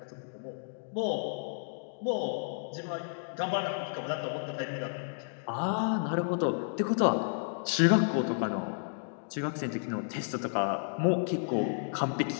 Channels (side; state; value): right; silent; digital silence